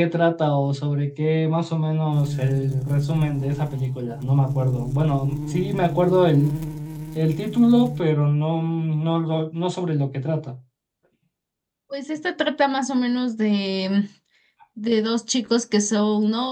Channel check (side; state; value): both; identical; correlation 1.00